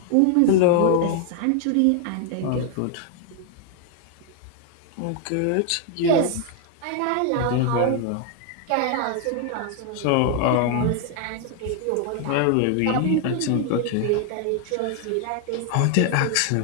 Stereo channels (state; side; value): different; both; correlation 0.00